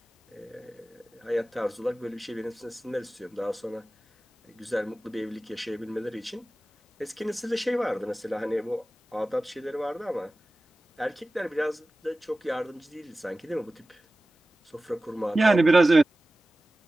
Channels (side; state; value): both; normal; correlation 0.96